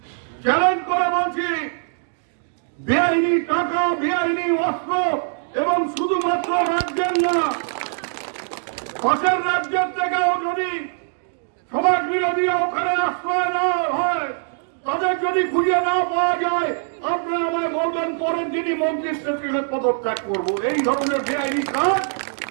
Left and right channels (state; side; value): silent; left; 62 dB below the other